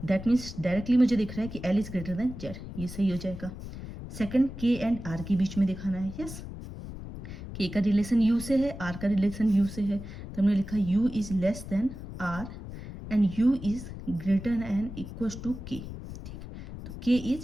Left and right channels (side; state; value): left; noise; rumble, 11 dB below the sound